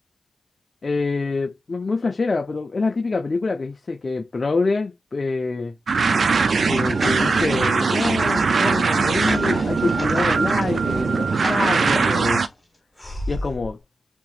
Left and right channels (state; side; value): normal; both; correlation 0.89